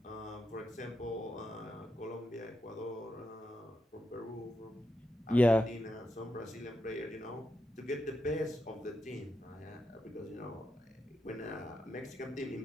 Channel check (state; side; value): normal; both; correlation 0.84